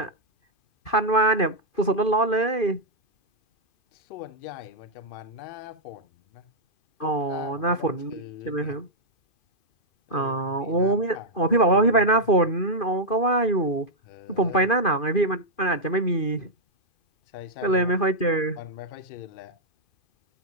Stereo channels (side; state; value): right; late; 2.5 ms